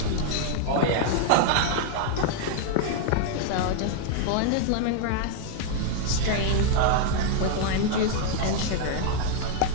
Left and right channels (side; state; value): both; different; correlation 0.00